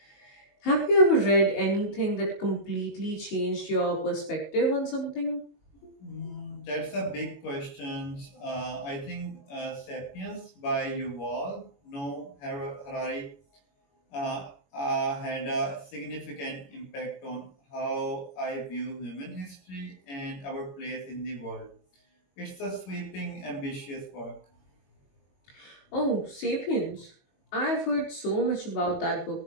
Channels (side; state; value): right; late; 22 ms